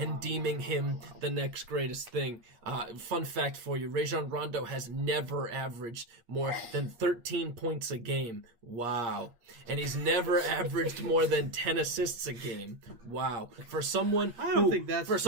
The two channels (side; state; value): left; late; 8.5 ms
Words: deeming him the next greatest thing. Fun fact for you, Rajon Rondo has never averaged more than 13 points a game. Wow. And he's never averaged more than 10 assists a game. Wow. For someone I don't think that's